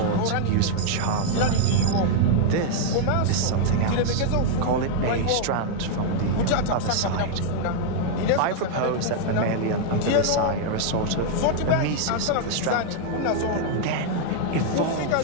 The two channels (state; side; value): different; both; correlation 0.00